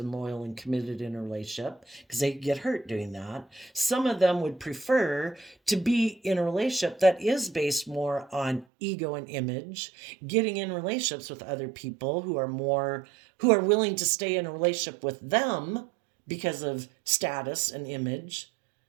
loyal and committed in a relationship, because they get hurt doing that, some of them would prefer to be in a relationship that is based more on ego and image, getting in relationships with other people who are willing to stay in a relationship with them because of status and image.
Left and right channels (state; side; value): drops out; left; at 8.7 s